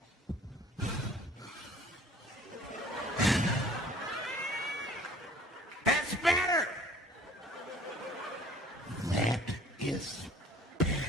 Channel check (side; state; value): both; normal; correlation 0.52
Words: That's better. That is better.